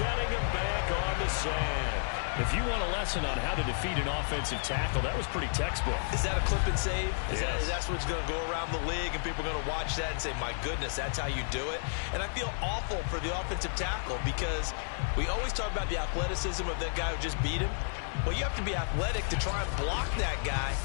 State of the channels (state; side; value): silent; right; digital silence